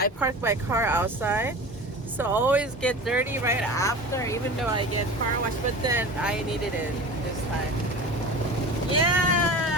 park my car outside. So I always get dirty right after, even though I get car wash, but then I needed it this time.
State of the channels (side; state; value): both; normal; correlation 0.34